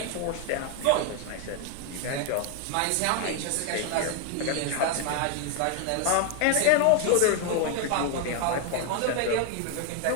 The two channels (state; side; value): different; both; correlation 0.01